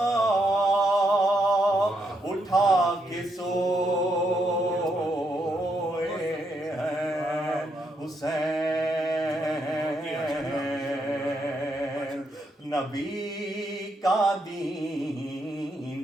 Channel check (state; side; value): normal; both; correlation 0.78